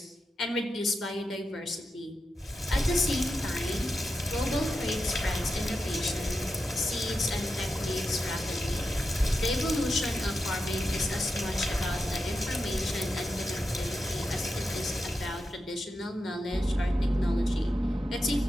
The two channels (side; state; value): both; normal; correlation 0.88